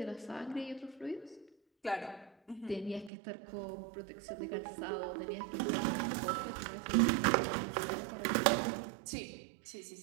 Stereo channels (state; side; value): drops out; left; at 3.1 s